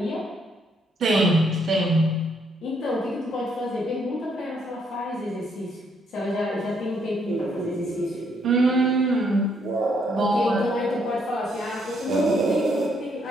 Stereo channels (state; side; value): normal; both; correlation 0.72